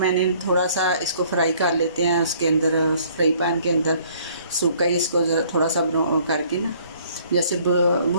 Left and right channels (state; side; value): inverted; both; correlation -0.59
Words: थोड़ा सा इसको फ्राई कर लेते हैं उसके अंदर, फ्राई पैन के अंदर सूखा ही इसको थोड़ा सा करके ना, जैसे